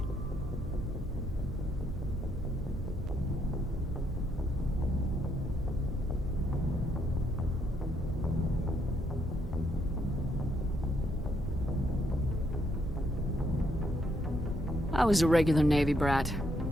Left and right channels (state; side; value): normal; both; correlation 0.74